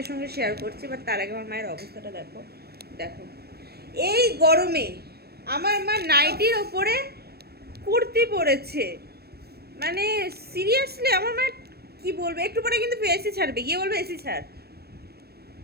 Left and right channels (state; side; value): late; left; 0.46 ms